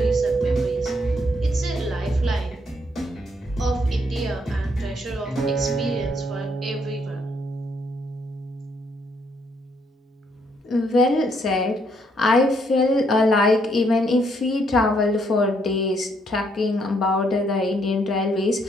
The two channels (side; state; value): both; normal; correlation 0.71